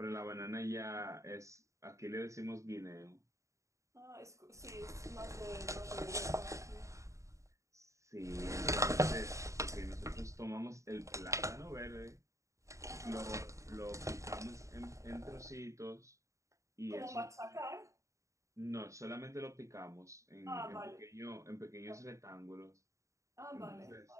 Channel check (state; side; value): late; left; 0.15 ms